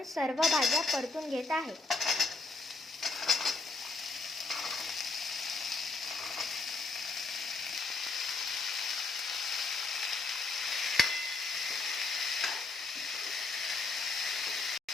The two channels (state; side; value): quieter; right; 3.5 dB